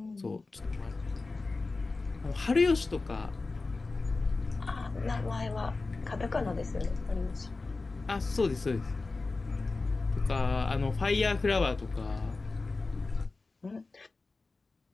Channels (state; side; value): quieter; right; 3.7 dB